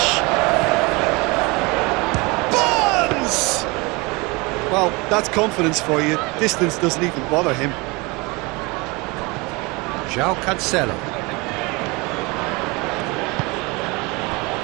Barnes! Well, that's confidence for you. Distance doesn't even bother him. João Cancelo.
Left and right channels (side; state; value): left; quieter; 25.9 dB